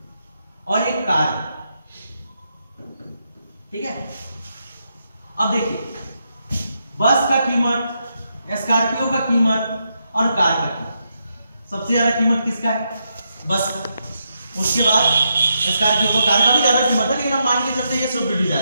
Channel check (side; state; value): both; inverted; correlation -0.82